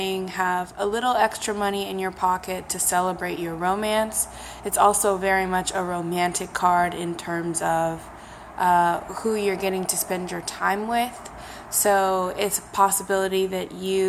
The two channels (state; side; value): identical; both; correlation 1.00